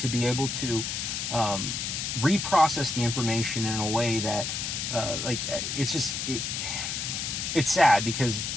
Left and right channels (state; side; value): noise; left; hiss, 3 dB below the sound